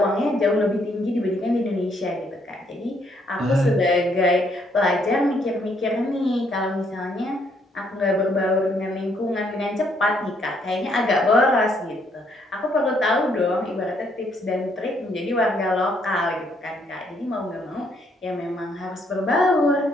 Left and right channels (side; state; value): both; normal; correlation 0.70